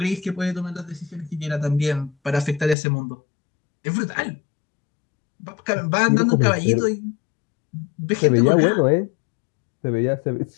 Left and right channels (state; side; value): drops out; right; at 2.8 s